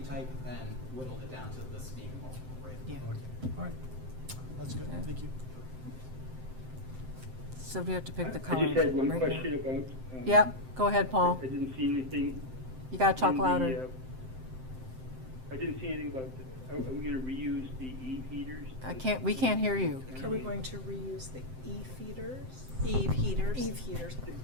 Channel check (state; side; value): late; left; 7.7 ms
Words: type and whittled it down to this being the most appropriate. Yeah. Okay, all right. That's good, Okay. thank you. So we have to pick the I color. just had one right now. question about. Yep, go ahead, Paul. I didn't see anything. You gotta talk in the, louder. I didn't see anything about, are we gonna reuse the heaters? We can't hear you. Are we going to reuse the E-feeders? Eve heaters. Eve heaters.